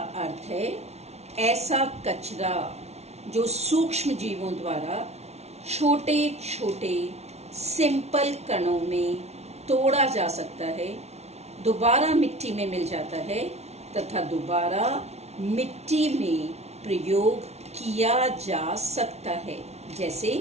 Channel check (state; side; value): late; left; 0.31 ms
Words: अर्थ है ऐसा कचरा जो सूक्ष्म जीवों द्वारा छोटे छोटे सिंपल कणों में तोड़ा जा सकता है, दोबारा मिट्टी में मिल जाता है तथा दोबारा मिट्टी में प्रयोग किया जा सकता है। जैसे